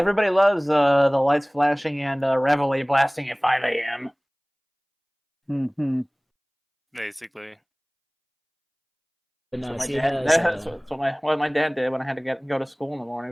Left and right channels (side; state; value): both; identical; correlation 1.00